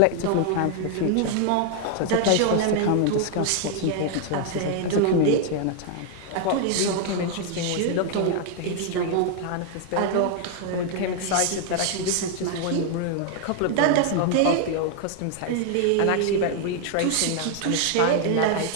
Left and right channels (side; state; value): both; different; correlation 0.00